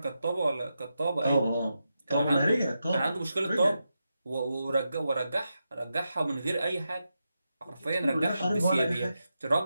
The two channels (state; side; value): inverted; both; correlation -0.88